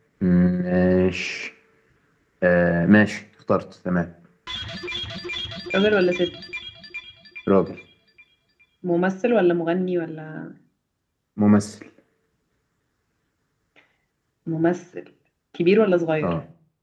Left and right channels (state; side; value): identical; both; correlation 1.00